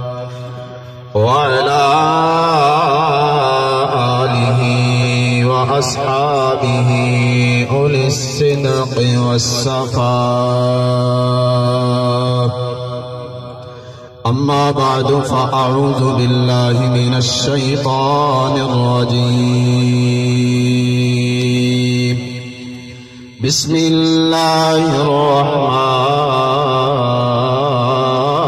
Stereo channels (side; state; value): both; identical; correlation 1.00